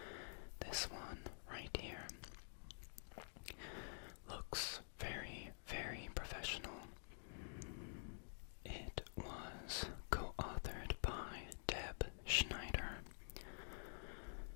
This one right here looks very, very professional. It was co-authored by Deb Schneider,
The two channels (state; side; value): silent; right; digital silence